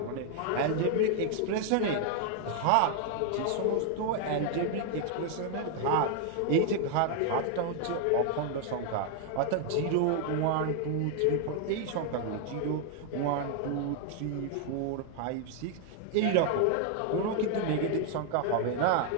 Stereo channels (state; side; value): different; both; correlation 0.00